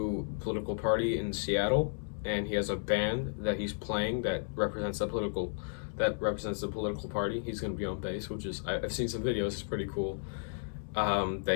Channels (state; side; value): silent; right; digital silence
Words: political party in Seattle, and he has a band that he's playing that represents the political party. He's going to be on bass, which is, I've seen some videos. It's pretty cool.